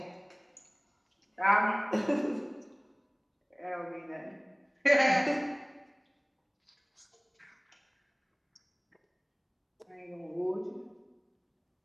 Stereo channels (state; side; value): identical; both; correlation 1.00